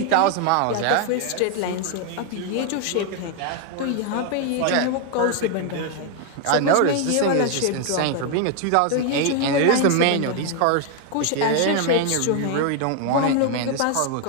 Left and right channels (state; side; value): different; both; correlation 0.01